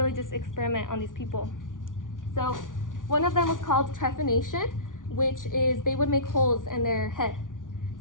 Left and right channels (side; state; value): right; late; 0.88 ms